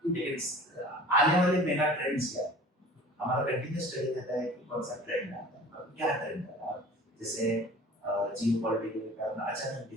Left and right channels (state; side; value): normal; both; correlation 0.43